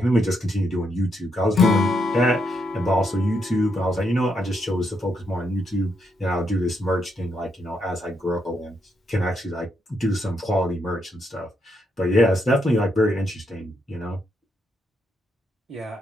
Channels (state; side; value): normal; both; correlation 0.79